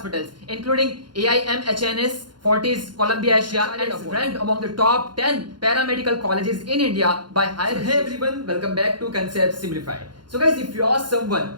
including AIM, HNS, Fortis, Columbia Asia, and is ranked among the top 10 paramedical colleges in India by higher. Hey everyone, welcome back to Concept Simplified. So guys, if you are someone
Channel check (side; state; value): left; late; 0.71 ms